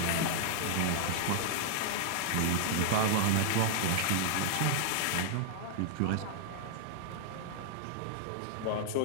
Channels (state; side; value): different; both; correlation -0.01